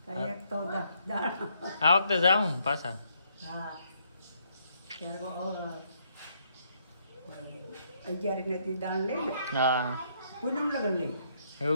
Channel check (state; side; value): inverted; both; correlation -0.72